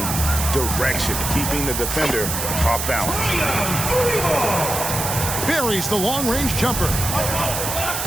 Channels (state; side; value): noise; right; hiss, 3 dB below the sound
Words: direction, keeping the defender off balance. Buries the long-range jumper.